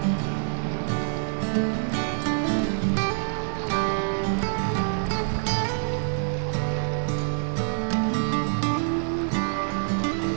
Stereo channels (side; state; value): left; silent; digital silence